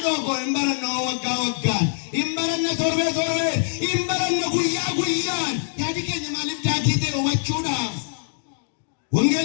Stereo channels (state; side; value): silent; right; digital silence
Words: koo hin baranne waggaa waggaan hin baranne torbee torbee hin baranne guyyaa guyyaan yaadi keenya maaliif daagii ta'e hubachuudhaaf